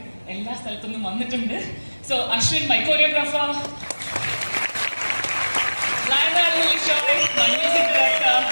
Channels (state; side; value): inverted; both; correlation -1.00